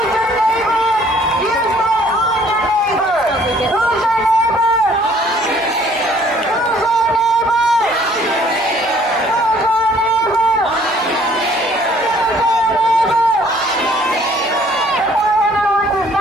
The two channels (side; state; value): right; noise; hum, 26 dB below the sound